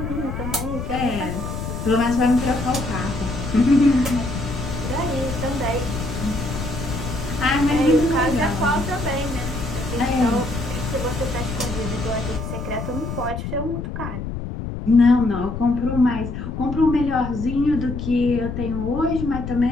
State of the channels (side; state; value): left; noise; rumble, 6 dB below the sound